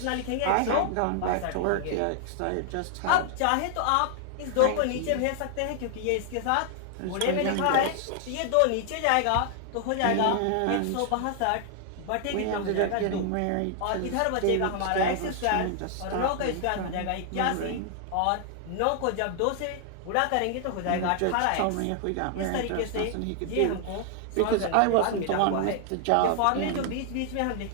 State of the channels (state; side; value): different; both; correlation 0.00